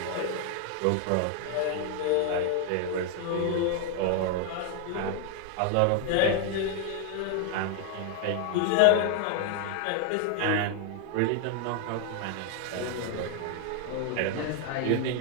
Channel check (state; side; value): different; both; correlation 0.00